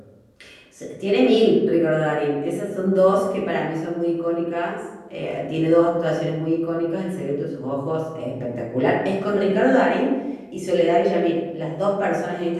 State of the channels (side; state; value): both; identical; correlation 1.00